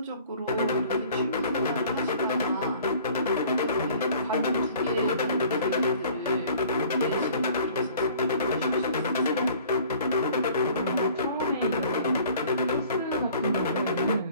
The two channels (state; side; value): inverted; both; correlation -0.51